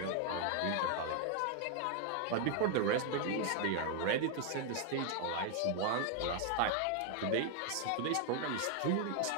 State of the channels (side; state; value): both; different; correlation 0.00